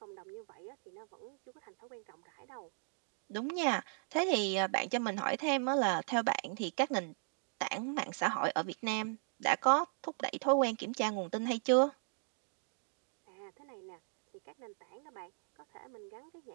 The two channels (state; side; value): silent; left; digital silence